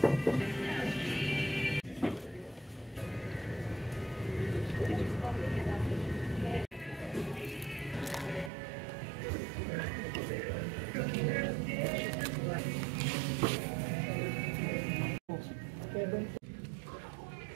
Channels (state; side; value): drops out; left; at 8.5 s